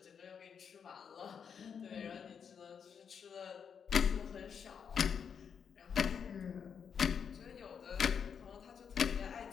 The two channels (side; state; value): right; quieter; 7.0 dB